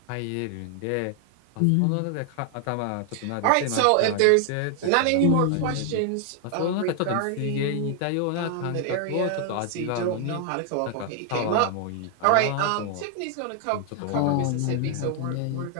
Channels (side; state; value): both; different; correlation 0.00